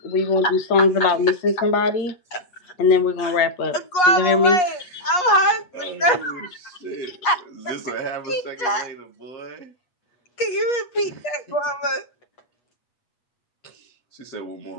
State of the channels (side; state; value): right; late; 8.3 ms